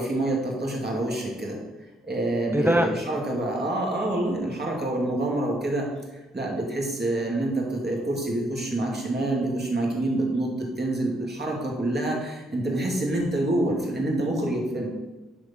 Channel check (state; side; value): normal; both; correlation 0.73